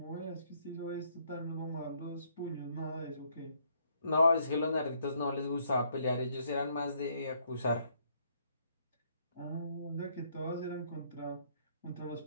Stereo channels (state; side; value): inverted; both; correlation -0.69